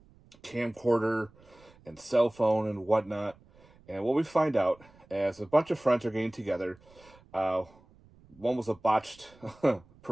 camcorder and cell phone and whatnot. And what we find out, as a bunch of friends are getting together, uh, one was a botched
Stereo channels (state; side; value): noise; right; rumble, 27 dB below the sound